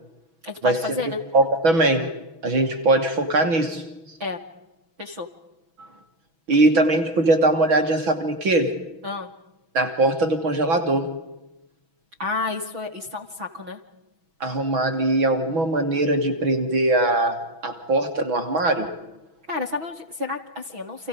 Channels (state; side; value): late; left; 6.1 ms